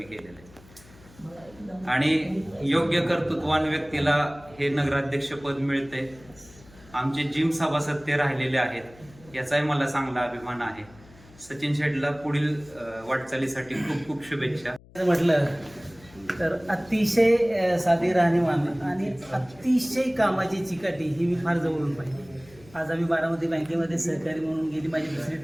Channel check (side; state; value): left; noise; hum, 24 dB below the sound